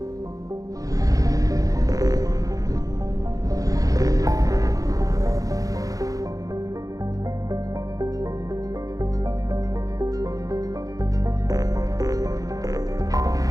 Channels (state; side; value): late; left; 0.17 ms